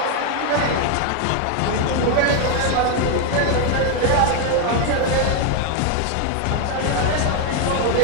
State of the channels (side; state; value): both; different; correlation 0.01